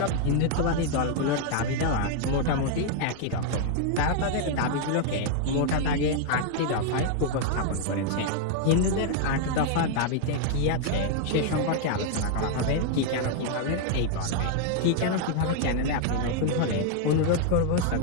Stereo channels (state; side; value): different; both; correlation 0.00